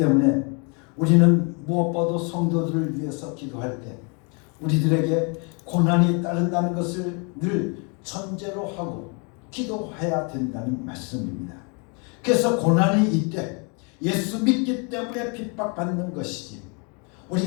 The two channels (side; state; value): right; quieter; 34.7 dB